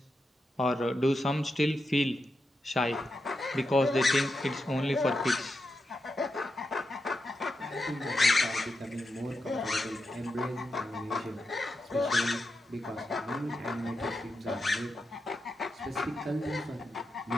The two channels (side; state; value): both; normal; correlation 0.87